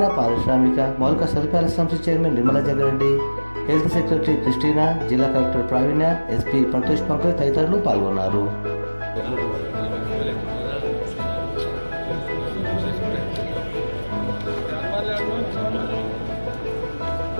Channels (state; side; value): inverted; both; correlation -1.00